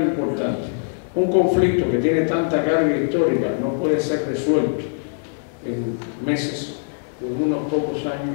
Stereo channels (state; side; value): silent; right; digital silence